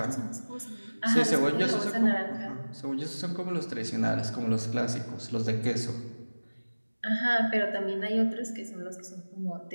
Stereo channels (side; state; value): both; inverted; correlation -1.00